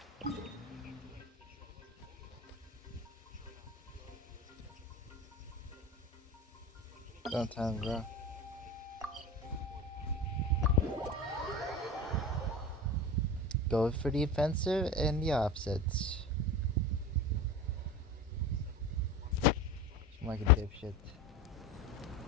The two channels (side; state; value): both; normal; correlation 0.30